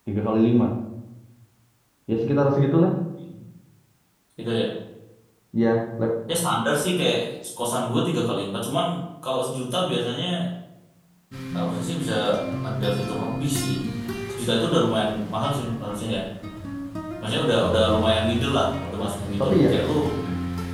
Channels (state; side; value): identical; both; correlation 1.00